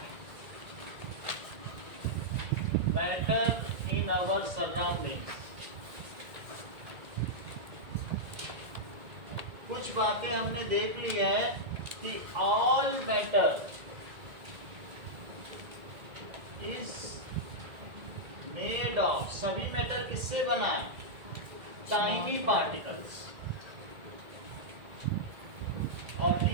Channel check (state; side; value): late; left; 1.9 ms